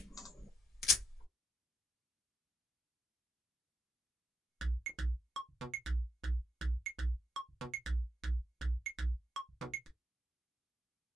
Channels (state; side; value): normal; both; correlation 0.80